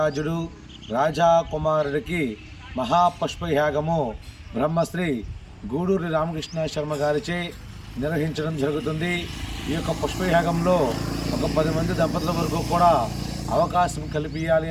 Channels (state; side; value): identical; both; correlation 1.00